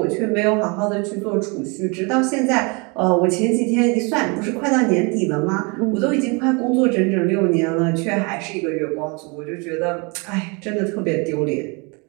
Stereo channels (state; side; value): quieter; left; 30.7 dB